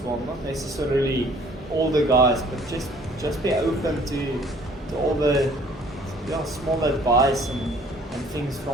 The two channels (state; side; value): normal; both; correlation 0.56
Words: well. Not necessarily all the guys, but just be open to all the small advice and things